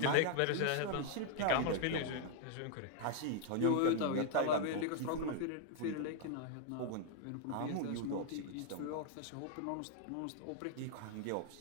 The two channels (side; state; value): both; different; correlation 0.00